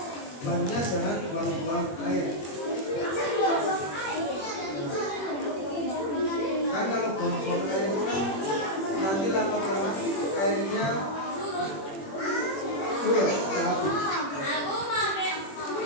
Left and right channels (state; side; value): late; right; 21 ms